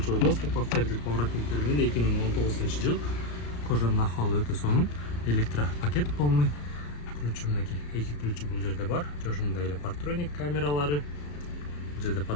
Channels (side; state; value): right; late; 34 ms